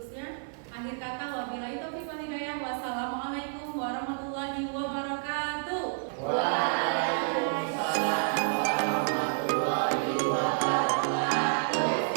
Akhir kata, wabillahi taufiq wal hidayah. Wassalamualaikum warahmatullahi wabarakatuh. Waalaikumsalam warahmatullahi wabarakatuh.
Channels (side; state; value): left; silent; 58 dB below the other